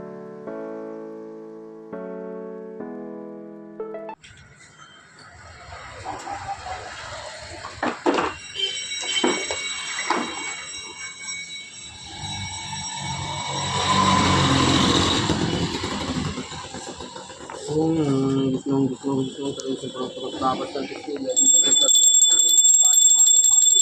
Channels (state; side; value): identical; both; correlation 1.00